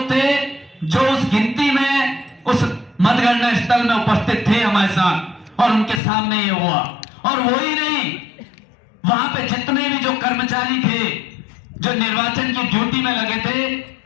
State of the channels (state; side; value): drops out; right; at 6.0 s